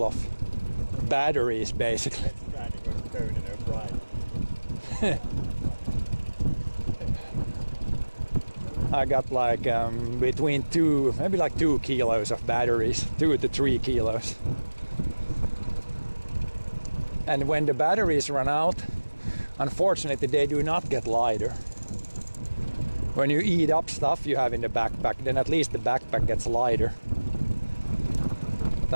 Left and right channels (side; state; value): both; inverted; correlation -1.00